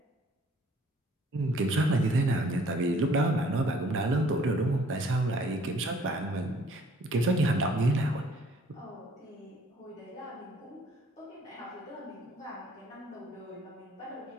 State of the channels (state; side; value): normal; both; correlation 0.58